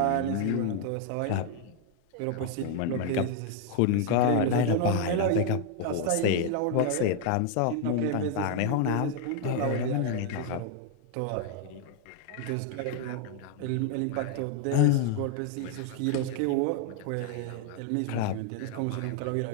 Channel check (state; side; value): different; both; correlation 0.00